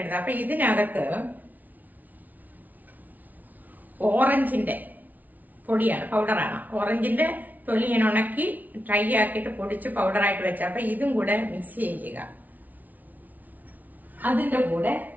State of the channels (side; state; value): left; late; 0.078 ms